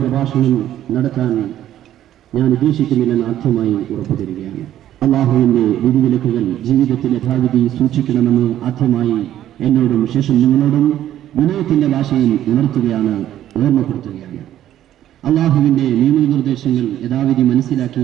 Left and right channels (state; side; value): quieter; left; 12.1 dB